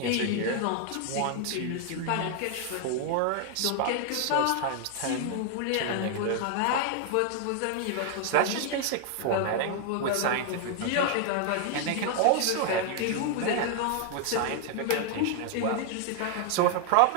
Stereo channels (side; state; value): both; different; correlation 0.00